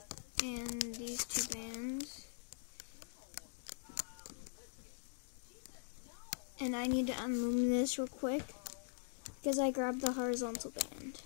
and these 2 bands. And I need to unloom this real quick because I grabbed the horizontal band.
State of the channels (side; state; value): right; silent; digital silence